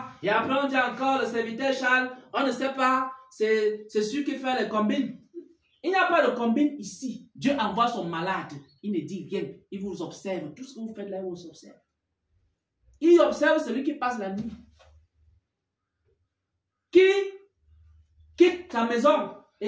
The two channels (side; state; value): both; identical; correlation 1.00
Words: Et après, on dit encore le serviteur Charles. On ne sait pas. C'est celui qui fait les combines. Il n'y a pas de combine ici. Dieu envoie son malade. Il ne dit rien. Il vous observe. Tout ce que vous faites là, il vous observe. Il observe celui qui passe la nuit. Qui quitte sa maison